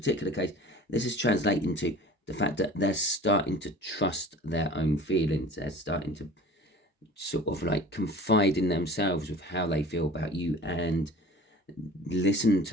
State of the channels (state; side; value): normal; both; correlation 0.43